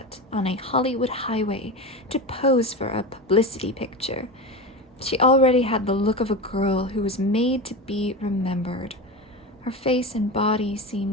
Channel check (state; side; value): normal; both; correlation 0.24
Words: on a Hollywood highway to pose for a publicity picture. She already had the look of a girl who was made to be remembered. Her face and body